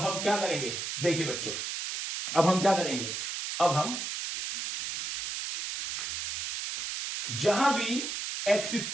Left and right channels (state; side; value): noise; right; hiss, 4 dB below the sound